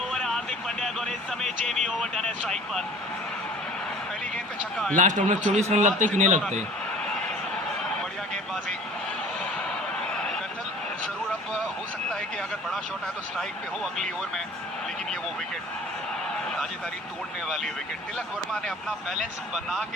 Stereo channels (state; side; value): normal; both; correlation 0.46